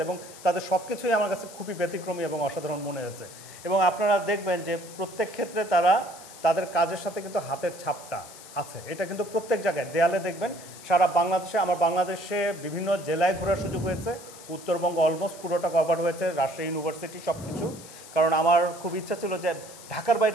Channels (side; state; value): left; noise; hiss, 17 dB below the sound